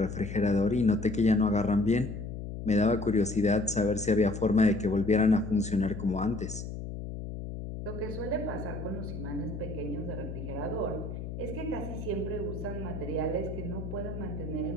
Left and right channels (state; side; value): noise; left; hum, 7 dB below the sound